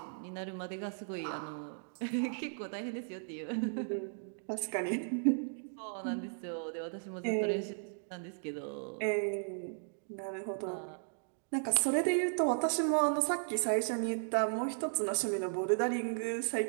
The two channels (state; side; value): silent; left; digital silence